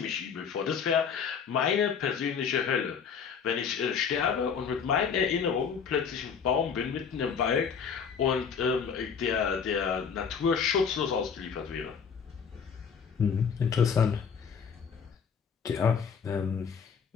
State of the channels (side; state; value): right; quieter; 6.6 dB